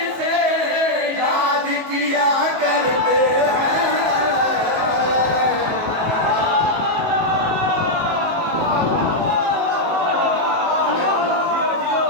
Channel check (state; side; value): late; left; 19 ms